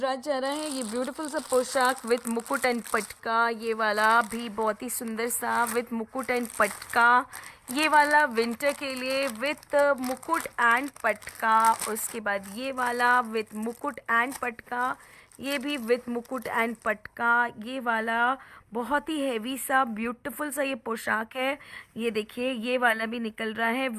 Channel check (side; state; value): both; identical; correlation 1.00